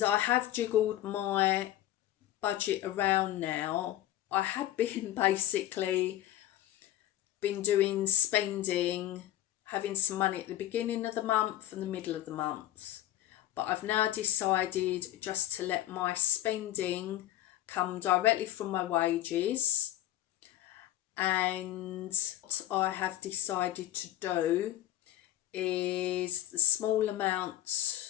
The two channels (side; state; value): right; quieter; 13.7 dB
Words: I have jiggled my budget around now. I had been basically doing spending, having some money at the beginning of the month and the middle of the month, but I've now decided just to let my spending come directly from my wages. And what I have decided to do is the small amount